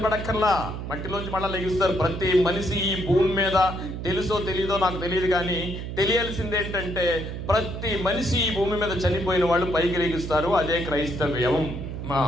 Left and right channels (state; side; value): noise; right; hum, 7 dB below the sound